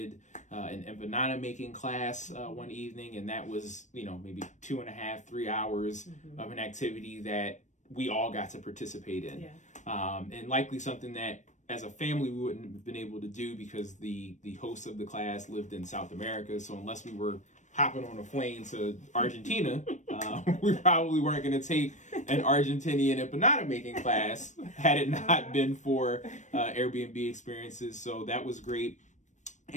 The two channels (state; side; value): late; right; 0.35 ms